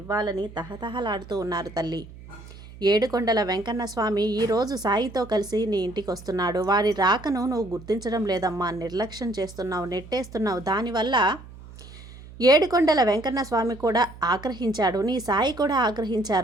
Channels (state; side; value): noise; right; hum, 17 dB below the sound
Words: ఇవ్వాలని తహతహలాడుతూ ఉన్నారు తల్లి. ఏడుకొండల వెంకన్న స్వామి ఈరోజు సాయితో కలిసి నీ ఇంటికి వస్తున్నాడు. వారి రాకను నువ్వు గుర్తించడం లేదమ్మా, నిర్లక్ష్యం చేస్తున్నావు, నెట్టేస్తున్నావు. దానివల్ల ఏడుకొండల వెంకన్న స్వామి కూడా ఆగ్రహించాడు, నీ సాయి కూడా